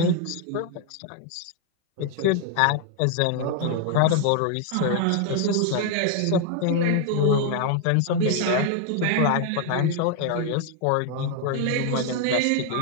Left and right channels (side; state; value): both; different; correlation 0.00